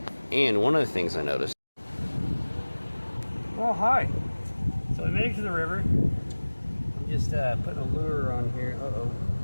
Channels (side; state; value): both; inverted; correlation -1.00